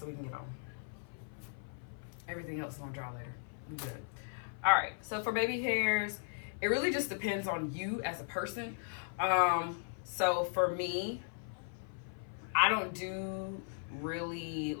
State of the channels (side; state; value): right; silent; 53 dB below the other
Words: we can get on. Everything else is gonna dry later. We good. All right, so for baby hairs, it really just depends on you as a person. So for me, I don't do really